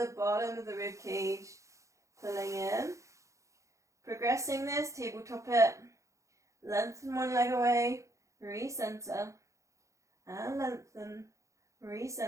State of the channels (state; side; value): late; left; 0.15 ms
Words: bottom of the rib cage, pulling in. Progressing this, tabletop it, lengthen one leg away, recenter, and lengthen,